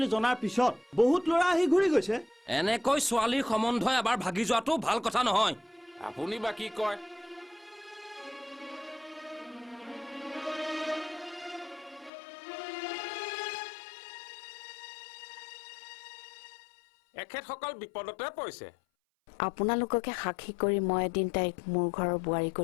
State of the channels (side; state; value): right; drops out; at 12.1 s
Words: জনাৰ পিছত বহুত ল'ৰা আহি ঘূৰি গৈছে। এনেকৈ ছোৱালীৰ সম্বন্ধ এবাৰ ভাগি যোৱাটো ভাল কথা নহয়। আপুনি বা কি কয়? এখেতসকল বিপদতে পৰিছে। আপোনালোককে সাক্ষী কৰি মই এদিন তাইক মোৰ ঘৰৰ বোৱাৰী